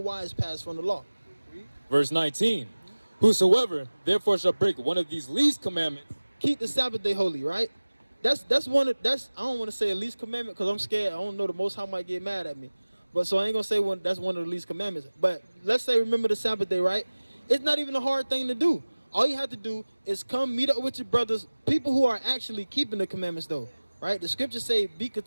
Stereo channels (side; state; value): both; inverted; correlation -1.00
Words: pass from the law. Verse 19. Whosoever therefore shall break one of these least commandments, keep the Sabbath day holy, right? That's I don't want to say a least commandment because I'm scared. I don't know, the Most High might get mad at me. But so I ain't gonna say that's one of the least commandments. But let's say remember the Sabbath day, right? It's not even a hard thing to do. All you have to do is come meet up with your brothers, people who are actually keeping the commandments though, right? The scriptures say, be